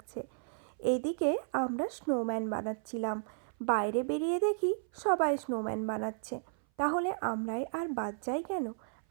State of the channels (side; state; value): left; silent; 55 dB below the other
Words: এদিকে আমরা স্নোম্যান বানাচ্ছিলাম, বাইরে বেরিয়ে দেখি সবাই স্নোম্যান বানাচ্ছে। তাহলে আমরাই আর বাদ যাই কেন?